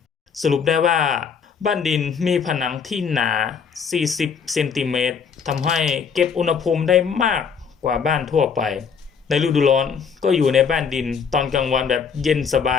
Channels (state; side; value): quieter; right; 6.4 dB